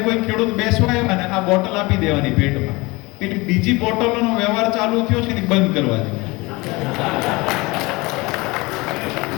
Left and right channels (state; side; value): quieter; right; 23.5 dB